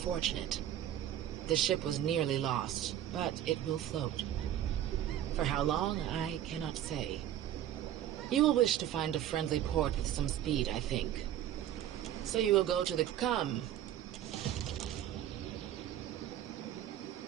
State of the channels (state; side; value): quieter; left; 11.5 dB